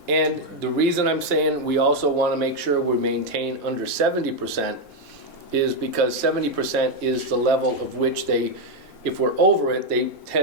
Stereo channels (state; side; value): normal; both; correlation 0.02